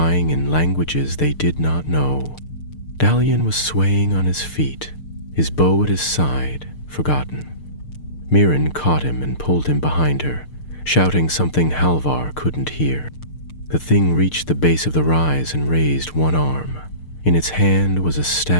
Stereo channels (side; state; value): right; late; 6.6 ms